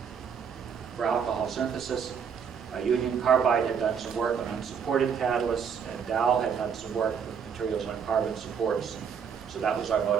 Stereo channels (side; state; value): left; quieter; 7.0 dB